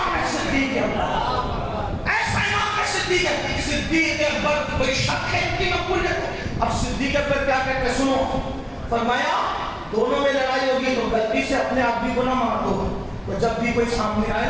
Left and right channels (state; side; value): identical; both; correlation 1.00